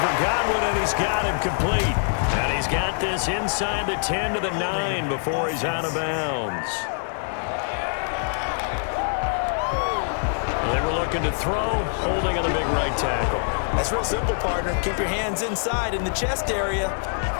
Godwin, and he's got him complete. And he's got this inside the 10 to the 9 before he's out of bounds. They were looking to throw, holding on the big right tackle. That's real simple, partner. Keep your hands inside in the chest area.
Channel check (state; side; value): silent; right; digital silence